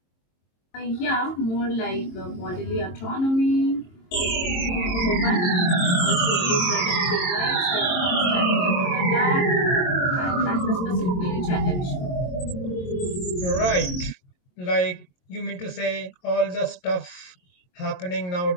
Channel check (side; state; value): right; late; 22 ms